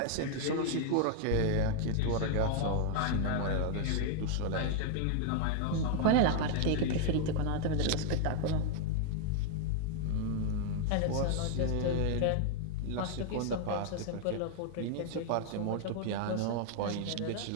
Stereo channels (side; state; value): both; different; correlation 0.00